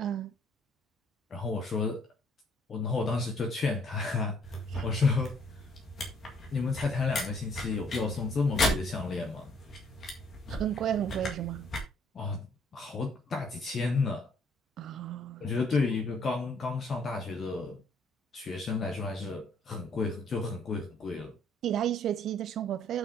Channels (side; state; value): both; normal; correlation 0.63